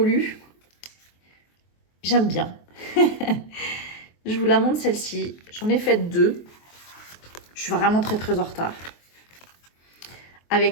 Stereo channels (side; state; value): right; late; 23 ms